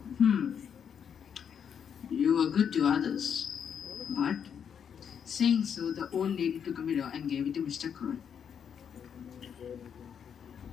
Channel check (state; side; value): quieter; right; 7.8 dB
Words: You were good to others. But, saying so, the old lady took a mirror and gave it to Mr. Cry.